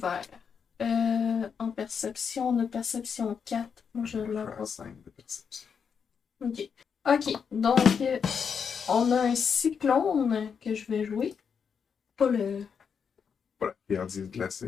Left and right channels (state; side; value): quieter; right; 6.6 dB